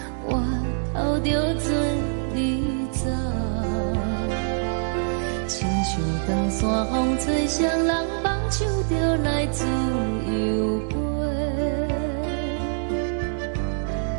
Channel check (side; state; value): left; silent; digital silence